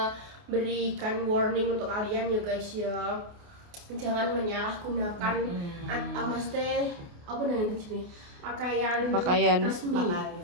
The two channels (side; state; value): left; late; 28 ms